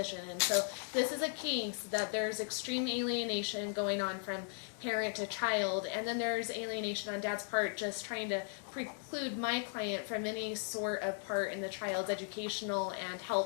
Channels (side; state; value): right; silent; 53 dB below the other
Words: and so this is a case that there's extreme alienation going on from parent to child, and then there's alienation on Dad's part just trying to preclude my client from any sort of part in the child's educational and